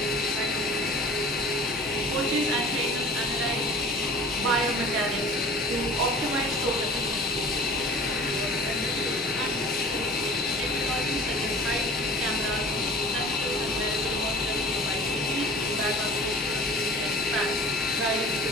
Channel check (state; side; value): normal; both; correlation 0.44